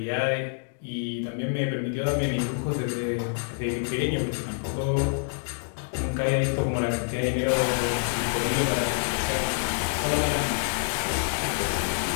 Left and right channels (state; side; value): silent; right; digital silence